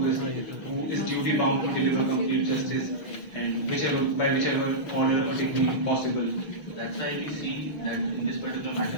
is duty bound to deliver complete justice and by whichever order or technique possible. That's why we see that in this particular matter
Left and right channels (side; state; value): right; late; 6.4 ms